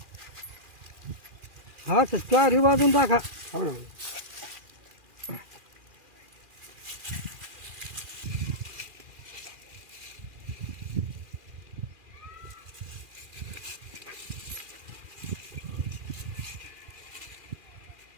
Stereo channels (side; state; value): left; late; 2.4 ms